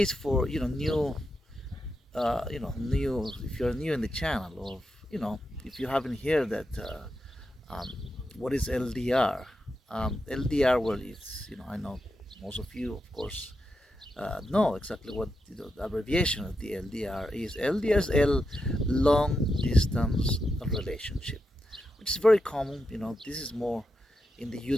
for new, if you're new in the channel, or if you haven't heard that, what is LDR? LDR, well, it's I know most of you, of course, know exactly what the abbreviation of the LDR is. LDR is long distance relationship, which is very common. This is more in the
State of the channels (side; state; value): both; normal; correlation 0.87